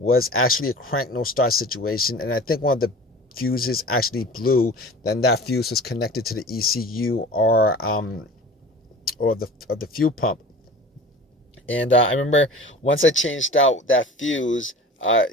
actually a crank no start situation, and I think one of the fuses actually blew. Then that fuse was connected to the ECU or the fuel pump. And I remember once I changed out that fuse,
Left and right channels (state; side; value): normal; both; correlation 0.40